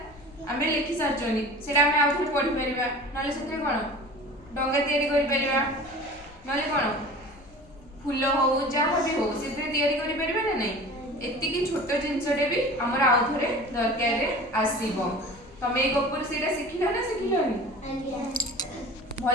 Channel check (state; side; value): normal; both; correlation 0.39